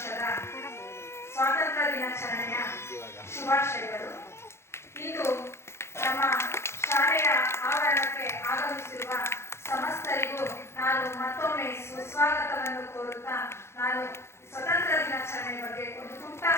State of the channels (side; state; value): right; late; 0.13 ms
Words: ಸ್ವಾತಂತ್ರ್ಯ ದಿನಾಚರಣೆಯ ಶುಭಾಶಯಗಳು. ಇಂದು ನಮ್ಮ ಶಾಲೆಯ ಆವರಣಕ್ಕೆ ಆಗಮಿಸಿರುವ ಸಮಸ್ತರಿಗೂ ನಾನು ಮತ್ತೊಮ್ಮೆ ಸುಸ್ವಾಗತವನ್ನು ಕೋರುತ್ತಾ ನಾನು ಸ್ವತಂತ್ರ ದಿನಾಚರಣೆ ಬಗ್ಗೆ ಒಂದು ಪುಟ್ಟ